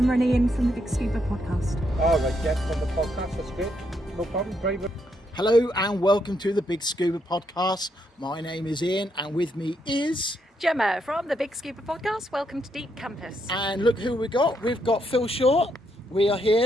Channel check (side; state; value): both; normal; correlation 0.77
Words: and Ian from the Big Scuba podcast. All right, yeah, from the podcast, that's good. No problem, very good. Hello and welcome to the Big Scuba podcast. My name is Ian and with me is... Gemma from the Big Scuba podcast. Welcome to Deep Campus. And look who we got. We've got Phil Short. We are